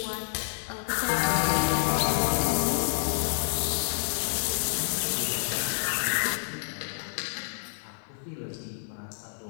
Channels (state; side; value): silent; right; digital silence